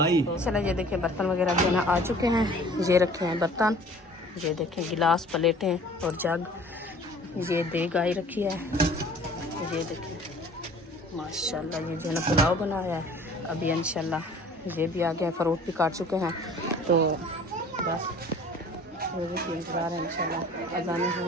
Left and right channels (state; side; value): normal; both; correlation 0.49